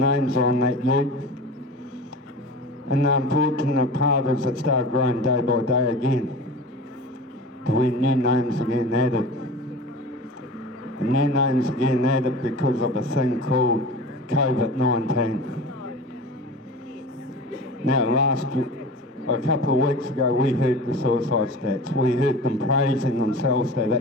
on that ute. And the unfortunate part is it started growing day by day again. When new names are getting added. And new names are getting added because of a thing called COVID-19. Now a couple of weeks ago we heard the suicide stats. We heard them praising themselves that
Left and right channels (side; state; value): both; normal; correlation 0.35